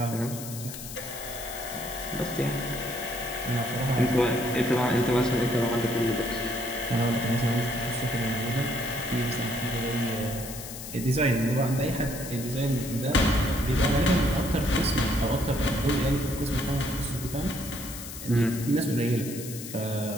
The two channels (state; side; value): noise; left; hiss, 11 dB below the sound